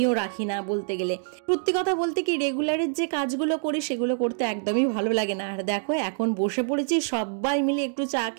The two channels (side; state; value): left; silent; digital silence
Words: রাখি না বলতে গেলে। সত্যি কথা বলতে কি, রেগুলারের যে কাজগুলো করি সেগুলো করতে একদমই ভালো লাগে না। আর দেখো এখন বসে পড়েছি, সবাই মিলে একটু চা